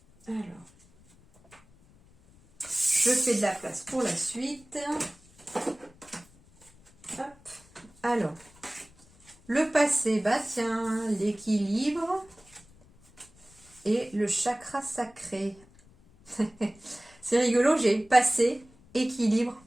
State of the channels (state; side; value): noise; left; rumble, 27 dB below the sound